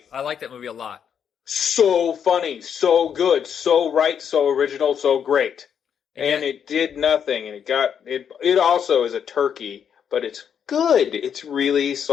I like that movie a lot. So funny, so good, so right, so original, so great. And it did nothing, and it also is a turkey, but it's good. It's really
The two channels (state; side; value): quieter; right; 8.0 dB